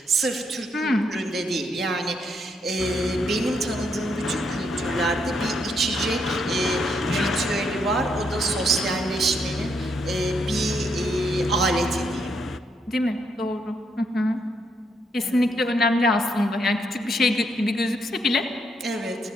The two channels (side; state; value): both; normal; correlation 0.76